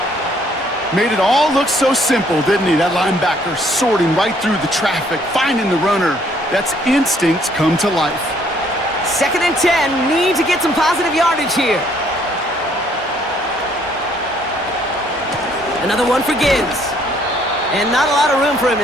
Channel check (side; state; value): both; normal; correlation 0.64